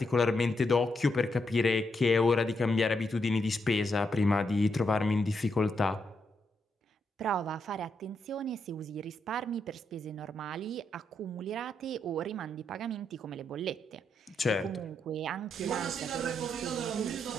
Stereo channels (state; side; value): normal; both; correlation 0.80